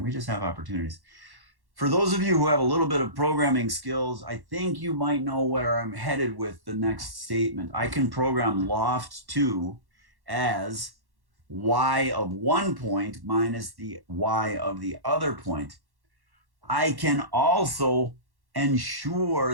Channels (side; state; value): left; late; 1.1 ms